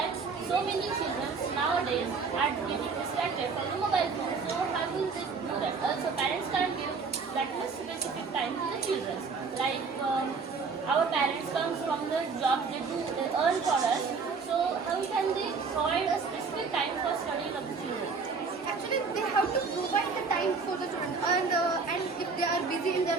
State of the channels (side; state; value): left; quieter; 4.9 dB